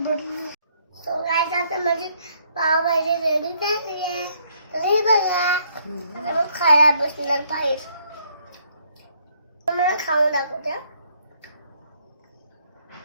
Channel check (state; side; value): inverted; both; correlation -0.68